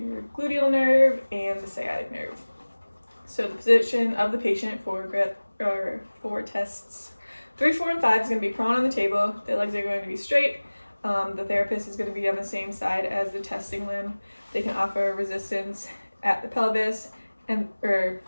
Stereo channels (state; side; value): inverted; both; correlation -1.00